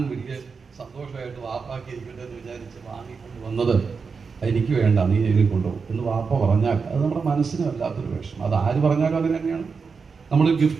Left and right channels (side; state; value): left; quieter; 5.2 dB